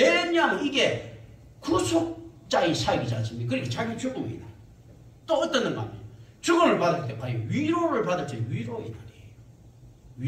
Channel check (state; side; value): identical; both; correlation 1.00